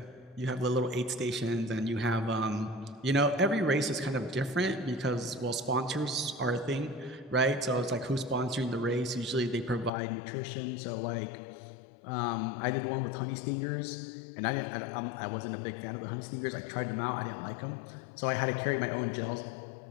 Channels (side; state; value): right; drops out; at 9.9 s